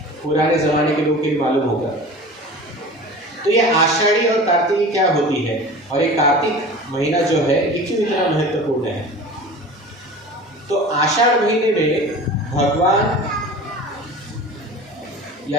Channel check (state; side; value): normal; both; correlation 0.38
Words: पुराने ज़माने के लोग के लिए मालूम होगा। तो ये आषाढ़ी और कार्तिकी क्या होती है और ये कार्तिक महीना जो है ये क्यों इतना महत्वपूर्ण है। तो आषाढ़ महीने में भगवान या